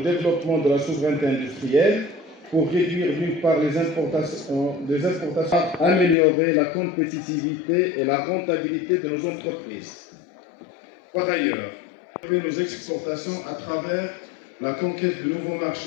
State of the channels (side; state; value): right; drops out; at 6.2 s